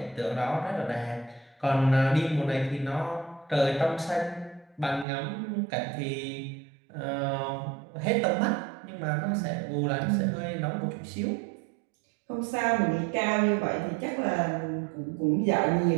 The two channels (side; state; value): left; drops out; at 5.1 s